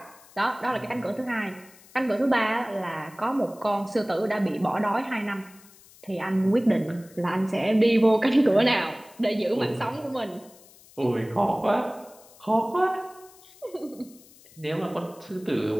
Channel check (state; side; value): noise; left; hiss, 24 dB below the sound